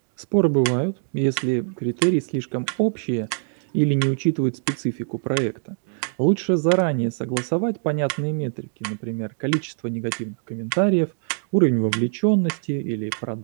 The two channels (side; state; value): left; silent; digital silence